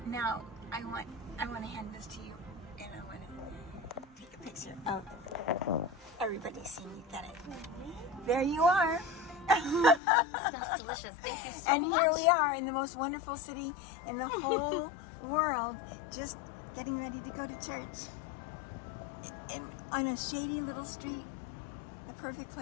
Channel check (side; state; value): right; drops out; at 10.0 s